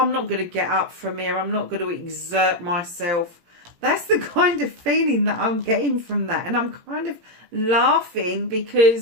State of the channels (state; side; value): late; left; 17 ms